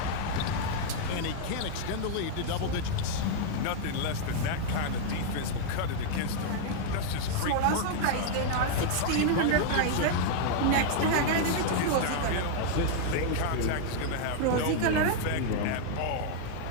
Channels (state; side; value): different; both; correlation -0.01